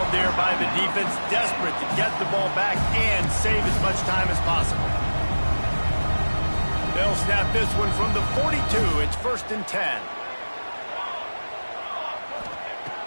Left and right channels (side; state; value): both; inverted; correlation -1.00